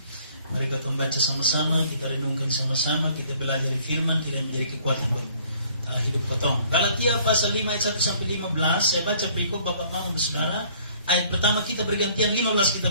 Mari kita membaca sama-sama, kita renungkan sama-sama, kita belajar firman, kita menjadi kekuatan buat hidup potong. Galatia pasal 5 ayat 1 sampai 15. Saya baca berikut Bapak Mama Saudara. Ayat pertama kita bergantian, 15 kita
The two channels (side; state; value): both; inverted; correlation -0.58